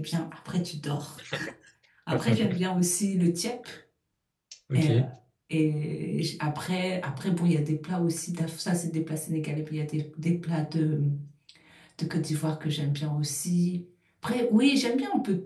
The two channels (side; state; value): both; identical; correlation 1.00